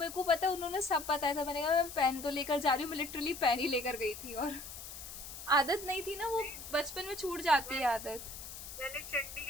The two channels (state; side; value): noise; left; hiss, 11 dB below the sound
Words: को पता है, उन्होंने सब बताया था। मैंने कहा मैं पेन तो लेकर जा रही हूँ, मैं लिटरली पेन ही लेकर गई थी, और आदत नहीं थी ना, वो बचपन में छूट जाती है आदत। मैंने